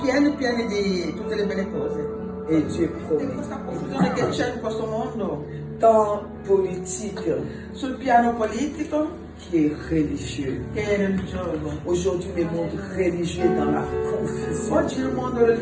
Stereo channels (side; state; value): both; identical; correlation 1.00